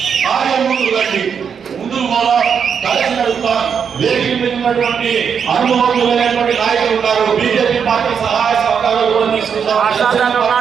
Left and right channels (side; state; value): left; quieter; 7.0 dB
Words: ముందుకు కూడా కలిసి నడుపుతా వేదిక మీద ఉన్నటువంటి అనుభవజ్ఞులైనటువంటి నాయకులు ఉన్నారు. బీజేపీ పార్టీ సహాయ సహకారాలు కూడా తీసుకుంటాం.